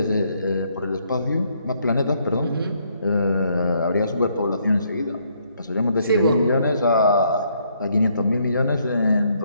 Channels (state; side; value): inverted; both; correlation -0.71